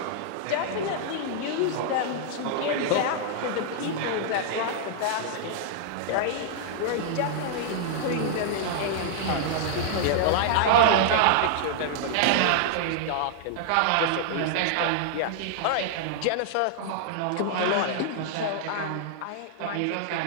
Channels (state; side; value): different; both; correlation -0.01